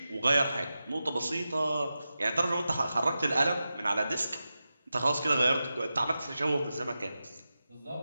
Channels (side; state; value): both; inverted; correlation -0.92